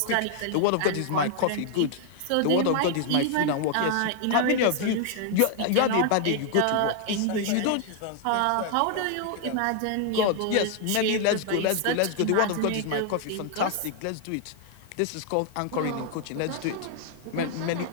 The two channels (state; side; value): different; both; correlation 0.00